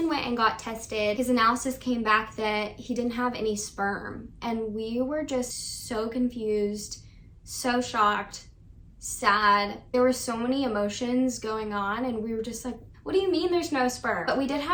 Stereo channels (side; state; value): both; identical; correlation 1.00